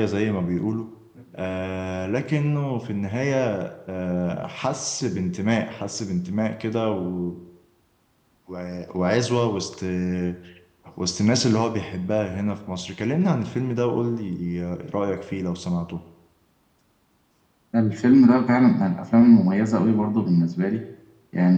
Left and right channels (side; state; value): both; identical; correlation 1.00